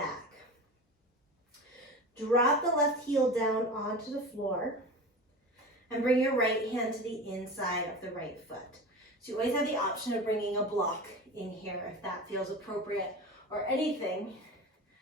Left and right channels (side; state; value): both; normal; correlation 0.31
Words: Drop the left heel down onto the floor and bring your right hand to the inside of the right foot. So you always have the option of bringing a block in here if that feels appropriate, or anything